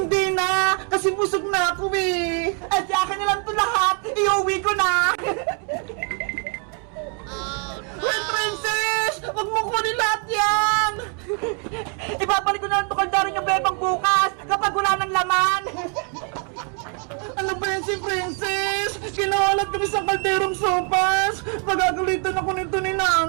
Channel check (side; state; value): left; quieter; 39.6 dB